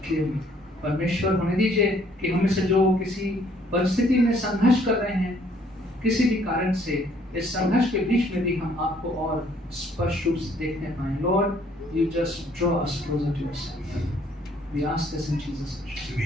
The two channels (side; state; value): both; normal; correlation 0.63